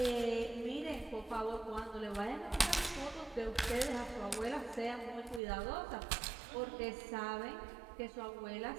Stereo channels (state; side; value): drops out; left; at 5.4 s